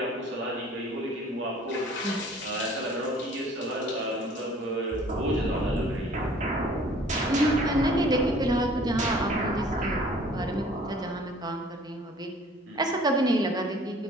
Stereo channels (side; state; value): both; normal; correlation 0.52